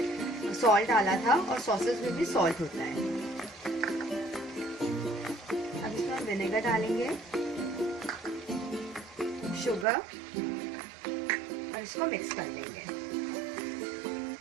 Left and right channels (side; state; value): left; drops out; at 9.9 s